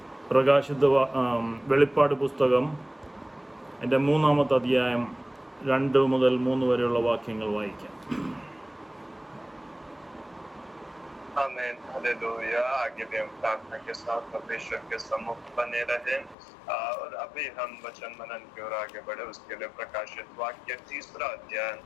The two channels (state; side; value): drops out; right; at 16.4 s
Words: വെളിപ്പാട് പുസ്തകം എൻ്റെ 3-ാമത്തെ അധ്യായം 2 മുതൽ 3 വരെയുള്ള വാക്യങ്ങൾ വായിക്കാം. आमेन, हालेलुया। आगे भी हम प्रार्थना के साथ परमेश्वर के सम्मुख बने रहे और अभी हम वचन मनन की ओर आगे बढ़े। उसके लिए प्रकाशित वाक्य 3रा अध्याय